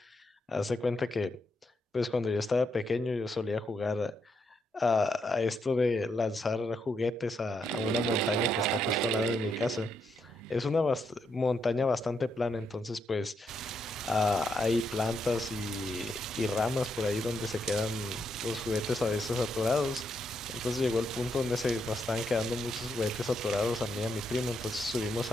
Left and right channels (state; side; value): normal; both; correlation 0.79